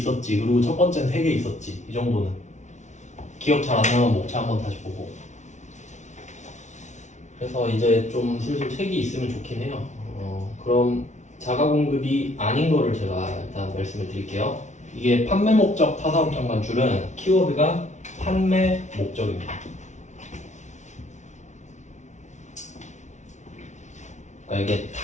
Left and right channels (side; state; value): right; late; 0.34 ms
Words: 그리고 첫 번째는 3개 있었지. 이 정도는. 기억 잘 안 나면 목차 한번 다시 보고. 그래서 이제 좀 슬슬 책이 있으면 좋긴 해요. 그럼 자가 공급이 아닌 거를 제가 일단 말씀을 드릴게요. 이게 판매 목적 타사업장 반출은 키워드가 판매 목적입니다. 그러니까 이게